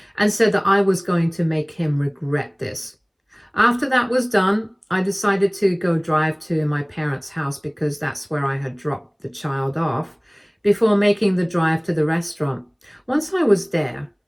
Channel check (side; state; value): both; identical; correlation 1.00